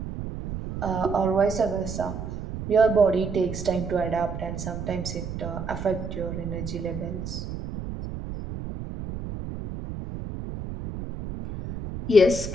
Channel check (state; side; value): noise; right; rumble, 7 dB below the sound